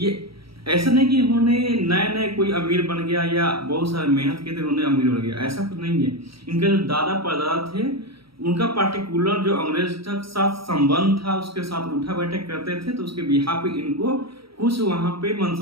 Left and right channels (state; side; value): late; left; 0.75 ms